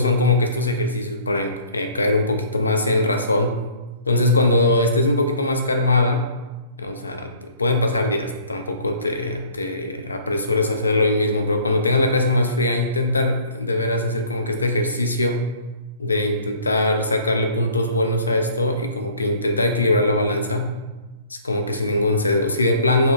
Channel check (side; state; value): both; inverted; correlation -0.53